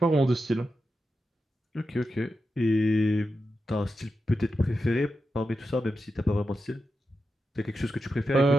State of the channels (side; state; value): both; normal; correlation 0.89